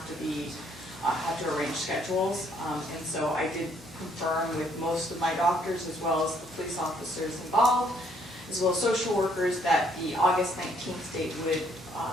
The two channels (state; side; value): normal; both; correlation 0.67